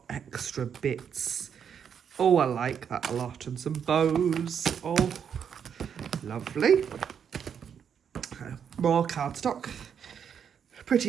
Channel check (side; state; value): left; quieter; 7.7 dB